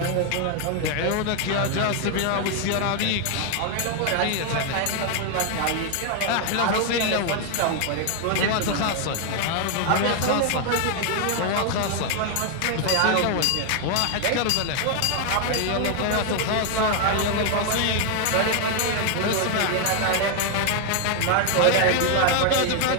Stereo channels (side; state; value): both; different; correlation 0.00